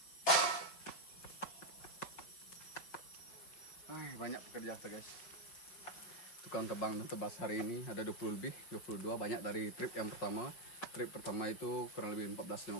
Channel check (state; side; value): late; right; 5.5 ms